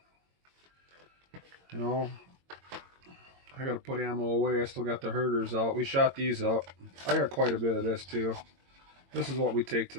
You know, I gotta put ammo away. I still got the herders out. We shot these up. I got quite a bit of this too. This is what we take to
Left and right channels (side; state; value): left; late; 22 ms